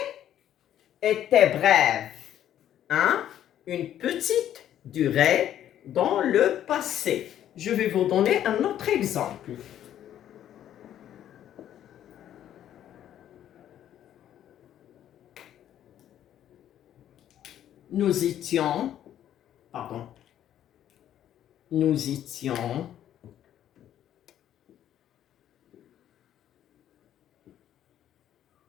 était bref, une petite durée dans le passé. Je vais vous donner un autre exemple. Nous étions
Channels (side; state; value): right; quieter; 11.1 dB